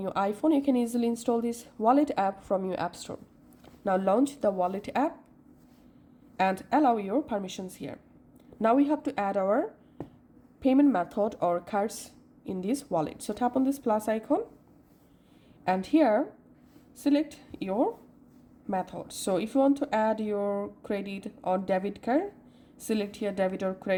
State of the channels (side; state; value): both; identical; correlation 1.00